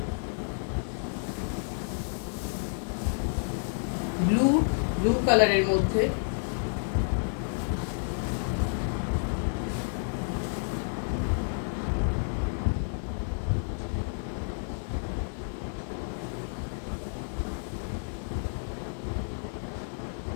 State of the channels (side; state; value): right; silent; digital silence